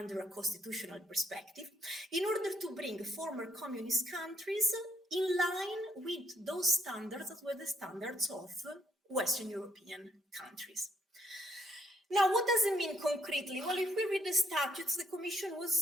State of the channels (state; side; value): normal; both; correlation 0.73